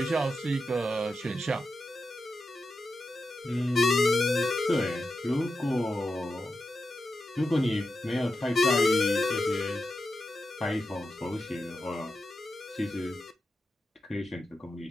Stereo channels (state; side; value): normal; both; correlation 0.90